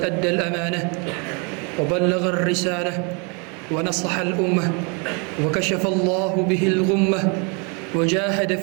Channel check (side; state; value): left; quieter; 33.5 dB